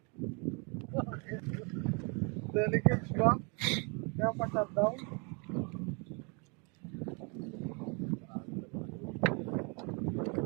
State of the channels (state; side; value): quieter; left; 33.7 dB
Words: Delicates ba? Kaya pa-shutdown?